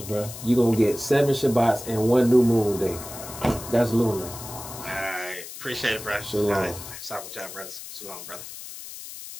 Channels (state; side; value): noise; left; hiss, 12 dB below the sound